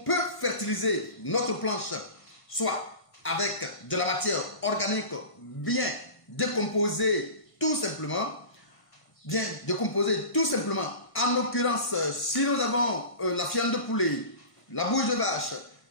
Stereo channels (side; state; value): right; late; 1.5 ms